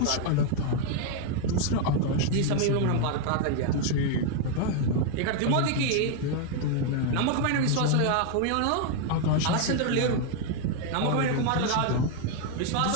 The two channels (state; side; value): different; both; correlation 0.00